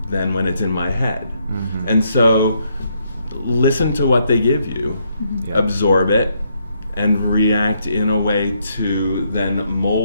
than when it's in my head. Mm-hmm. And so listen to what they give you, absorb it, and react in a way to then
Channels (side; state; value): both; inverted; correlation -0.74